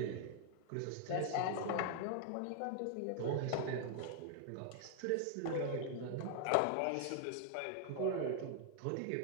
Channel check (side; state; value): both; different; correlation 0.00